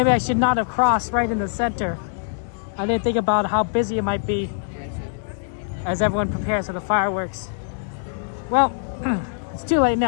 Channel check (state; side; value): silent; right; digital silence